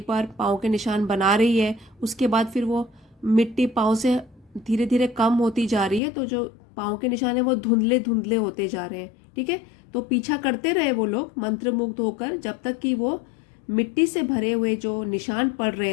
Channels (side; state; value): right; drops out; at 6.0 s